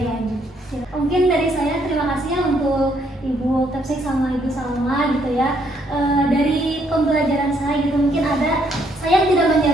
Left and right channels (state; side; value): normal; both; correlation 0.70